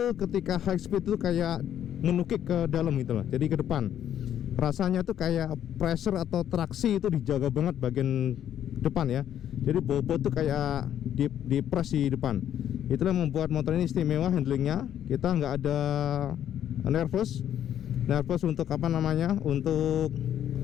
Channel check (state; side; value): quieter; right; 10.4 dB